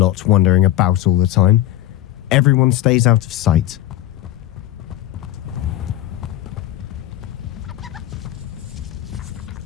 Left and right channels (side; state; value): right; quieter; 13.5 dB